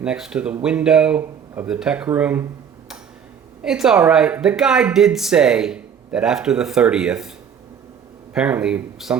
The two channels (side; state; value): left; quieter; 7.7 dB